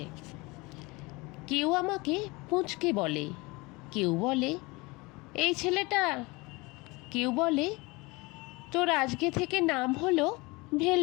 কেউ আমাকে পুঁচকে বলে, কেউ বলে এই ছেলেটা, কেউ বলে তোর আজকে থেকে নাম হলো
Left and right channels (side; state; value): right; quieter; 24.6 dB